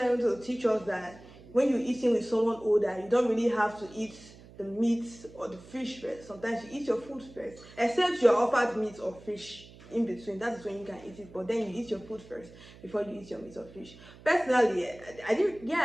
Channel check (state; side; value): noise; right; hum, 20 dB below the sound